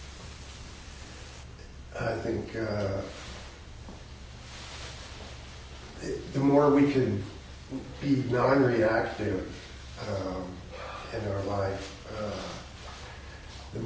I think the more we can be non-reactive in our life, the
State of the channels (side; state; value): both; identical; correlation 1.00